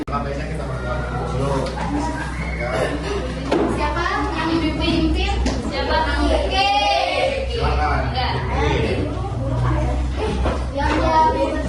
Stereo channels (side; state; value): both; identical; correlation 1.00